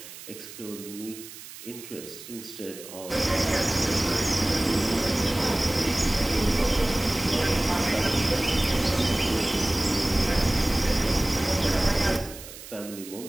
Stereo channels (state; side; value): noise; right; hiss, 15 dB below the sound